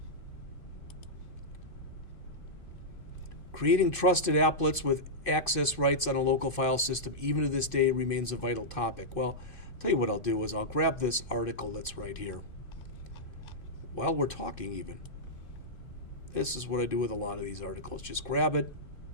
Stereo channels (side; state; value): right; late; 2.5 ms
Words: Creating trusted applets with access rights on a local file system, even to this day, remains a vital topic. Well, I'll tell you what I'll do is I'll grab this article that's right here. While we're talking even, this is what I do with a lot of these articles. Just grab it,